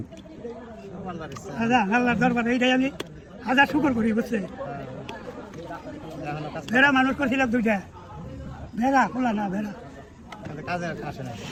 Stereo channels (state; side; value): identical; both; correlation 1.00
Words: আল্লাহর দরবারে এইটাই আমি হাজার শুকর করি, বুঝছে? ভেড়া মানুষ করছিলাম 2টা, ভেড়া খোলা না ভেড়া কাজে আসে না।